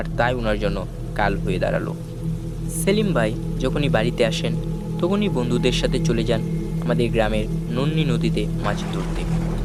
তাই ওনার জন্য কাল হয়ে দাঁড়ালো। সেলিম ভাই যখনই বাড়িতে আসেন তখনই বন্ধুদের সাথে চলে যান আমাদের গ্রামের নন্নি নদীতে মাছ ধরতে।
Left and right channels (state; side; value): identical; both; correlation 1.00